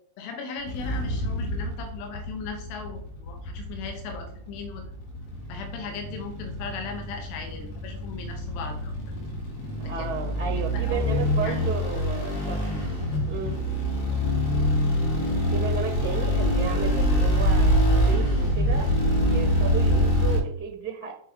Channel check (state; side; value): late; right; 20 ms